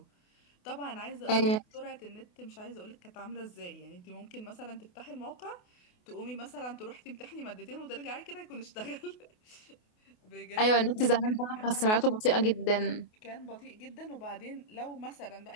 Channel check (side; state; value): right; late; 28 ms